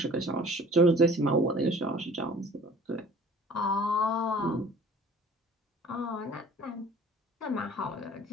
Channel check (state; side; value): normal; both; correlation 0.49